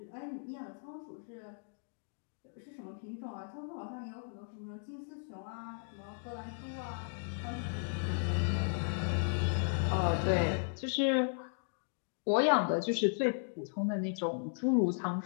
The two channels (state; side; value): silent; right; digital silence